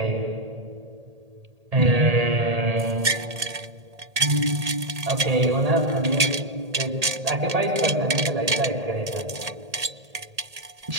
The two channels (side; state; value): left; late; 1.8 ms